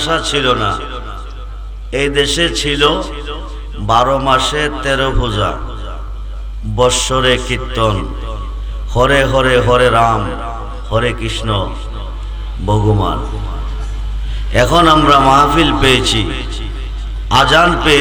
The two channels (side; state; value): both; identical; correlation 1.00